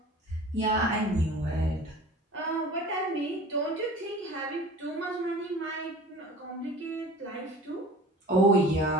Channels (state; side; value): normal; both; correlation 0.42